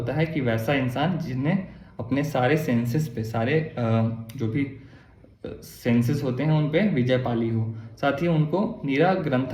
है कि वैसा इंसान जिसने अपने सारे सेंसेस पे, सारे जो भी सेंसेस होते हैं उन पे विजय पाली हो। साथ ही उनको नीरा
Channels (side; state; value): both; identical; correlation 1.00